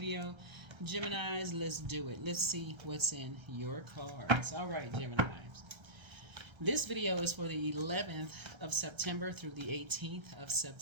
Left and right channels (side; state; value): left; late; 1.3 ms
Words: Geminis. Let's do it. Let's see what's in your cards. All right, Geminis. This video is for the 11th of September through the 18th of